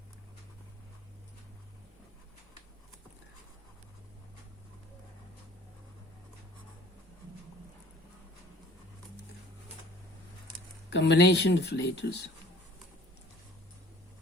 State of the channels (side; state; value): both; normal; correlation 0.51